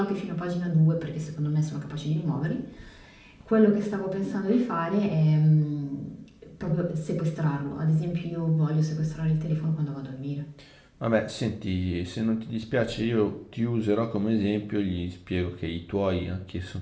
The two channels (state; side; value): identical; both; correlation 1.00